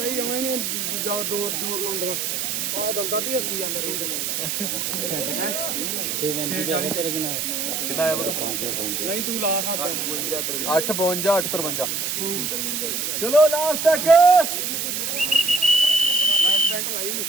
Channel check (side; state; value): right; noise; hiss, 1 dB below the sound